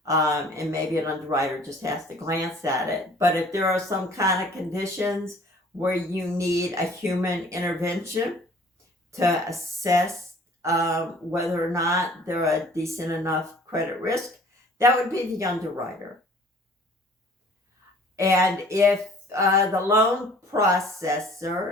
And maybe an underwriter just has to glance at it. But if there are some kind of conditions where you need a human intervention to assess whether or not they're a decent enough credit risk, that would be the underwriter. And if the loan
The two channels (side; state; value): both; normal; correlation 0.52